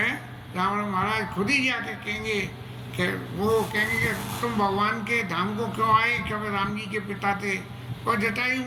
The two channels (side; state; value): both; identical; correlation 1.00